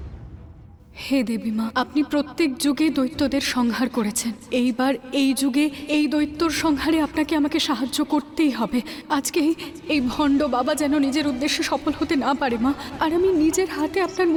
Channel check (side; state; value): both; identical; correlation 1.00